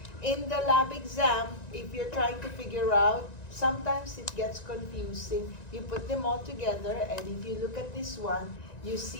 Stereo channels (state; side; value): late; right; 1.9 ms